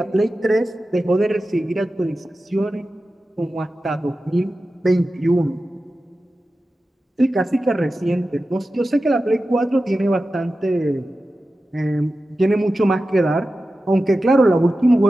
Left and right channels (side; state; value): both; normal; correlation 0.93